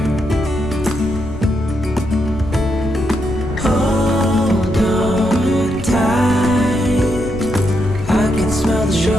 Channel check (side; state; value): left; noise; rumble, 10 dB below the sound